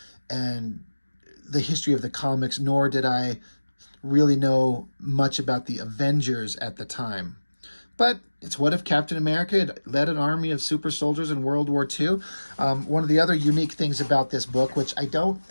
and the history of the comics, nor did I really know much about the Avengers at the time. But it's what if Captain America had led an army of super soldiers in World War II. One of the other unique things about this book, which I don't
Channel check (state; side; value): inverted; both; correlation -1.00